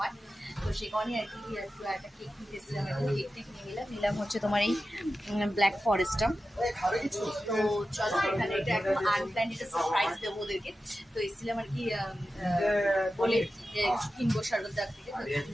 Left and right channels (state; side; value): normal; both; correlation 0.93